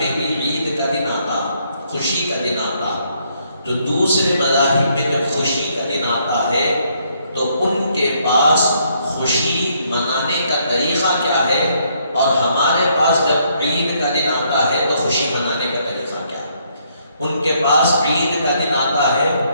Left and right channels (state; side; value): inverted; both; correlation -0.71